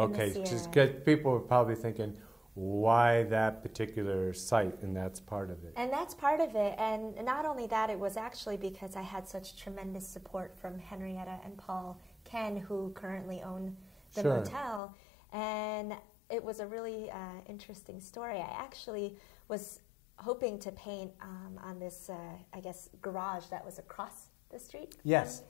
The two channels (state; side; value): drops out; right; at 14.8 s